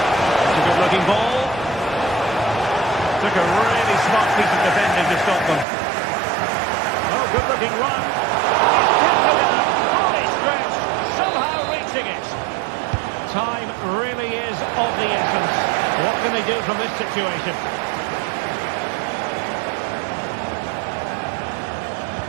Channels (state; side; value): drops out; left; at 5.7 s